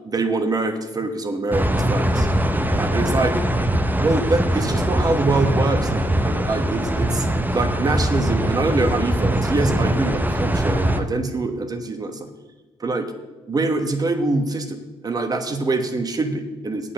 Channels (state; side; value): normal; both; correlation 0.79